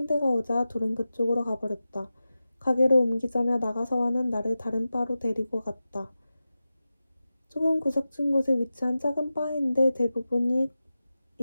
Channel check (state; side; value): inverted; both; correlation -0.94